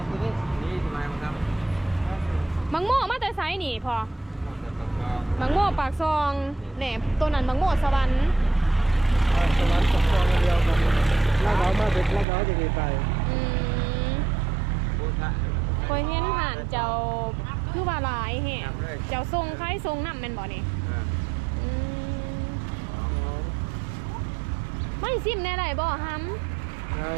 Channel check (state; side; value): drops out; left; at 12.2 s